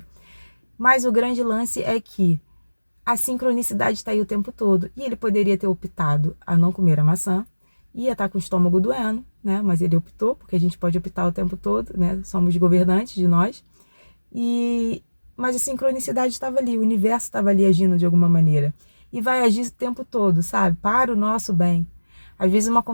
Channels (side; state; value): both; inverted; correlation -1.00